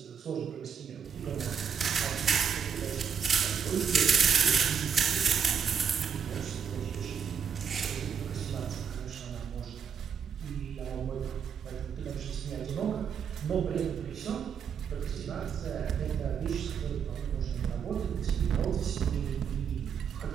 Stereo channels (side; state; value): left; quieter; 7.1 dB